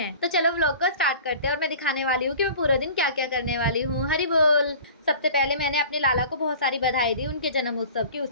तो चलो व्लॉग को स्टार्ट करते हैं और मैं दिखाने वाली हूँ कि मैं पूरा दिन क्या क्या करने वाली हूँ। हरि बोल। सबसे पहले मैंने अपने लाला को बहुत सारी बधाई दी उनके जन्म उत्सव की।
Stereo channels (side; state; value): both; inverted; correlation -0.42